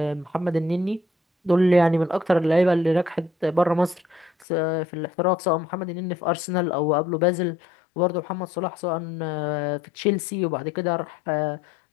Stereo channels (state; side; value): drops out; right; at 4.5 s